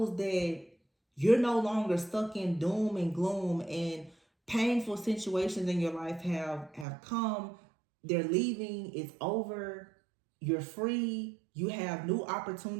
that you're no longer stuck in doom and gloom, and painful situations in your life have come. They're leaving. It's over. You're free. You have new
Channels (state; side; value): drops out; left; at 6.9 s